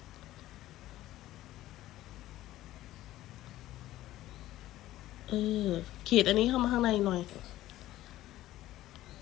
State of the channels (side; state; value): right; quieter; 15.0 dB